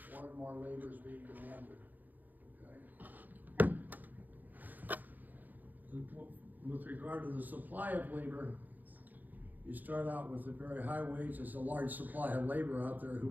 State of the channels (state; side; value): late; left; 0.084 ms